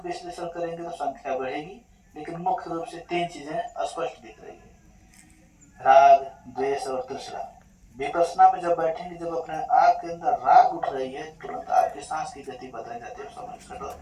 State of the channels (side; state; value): both; identical; correlation 1.00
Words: विश्लेषण करेंगे तो संख्या बढ़ेगी, लेकिन मुख्य रूप से तीन चीजें स्पष्ट दिख रही है, राग, द्वेष और तृष्णा। विपश्यना में जब बैठेंगे, जब अपने आग के अंदर राग उठ रही है, तुरंत आपकी सांस की गति बदल जाती है,